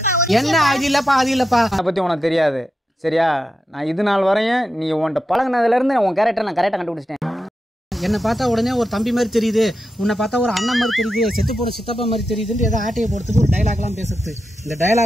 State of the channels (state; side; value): normal; both; correlation 0.88